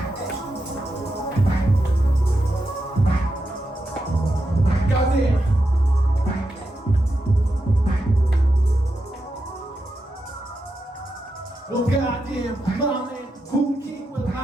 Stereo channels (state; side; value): normal; both; correlation 0.87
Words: Well, goddamn, my man, who king will